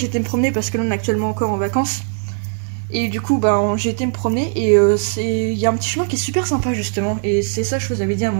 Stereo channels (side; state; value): left; silent; digital silence